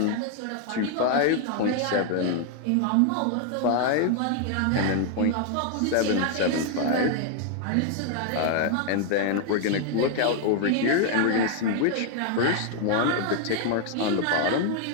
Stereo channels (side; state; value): both; different; correlation 0.00